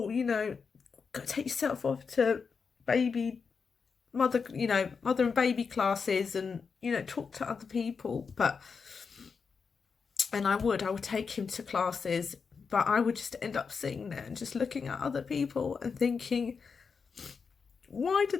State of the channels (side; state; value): right; quieter; 5.5 dB